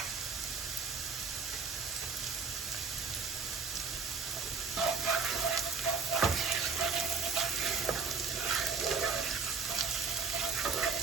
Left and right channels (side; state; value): left; quieter; 4.9 dB